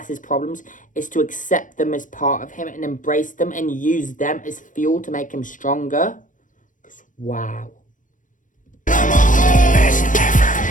his problems is to accept them as part of him and embrace them and use them as fuel to make him stronger? Wow.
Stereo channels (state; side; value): late; right; 0.38 ms